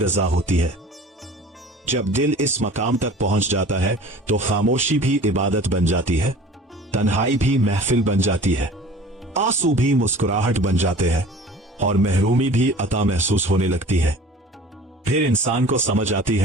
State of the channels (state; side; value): normal; both; correlation 0.44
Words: होती है। जब दिल इस मकाम तक पहुंच जाता है तो खामोशी भी इबादत बन जाती है, तन्हाई भी महफिल बन जाती है, आंसू भी मुस्कुराहट बन जाते हैं और महरूमी भी अता महसूस होने लगती है। फिर इंसान को समझ आती